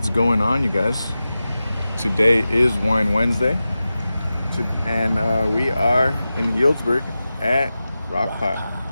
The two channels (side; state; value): both; inverted; correlation -0.94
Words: going on, you guys? Today is Wine Wednesday, and we are in Healdsburg at Rockpile.